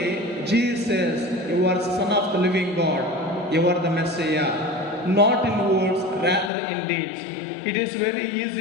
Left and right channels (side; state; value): right; drops out; at 6.5 s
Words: Jesus, you are the Son of the living God. You are the Messiah. Not in words, rather in deeds. It is very